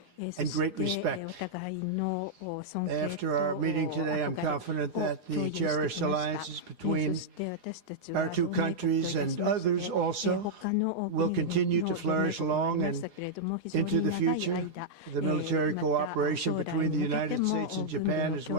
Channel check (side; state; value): left; late; 9.7 ms